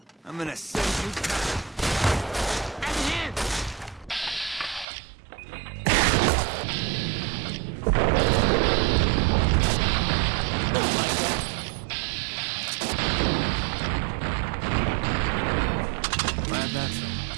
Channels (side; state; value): left; drops out; at 4.9 s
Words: I'm gonna send you... Glad that's over.